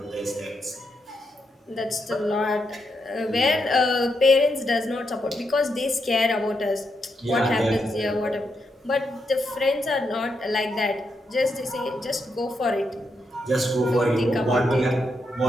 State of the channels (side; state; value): both; normal; correlation 0.82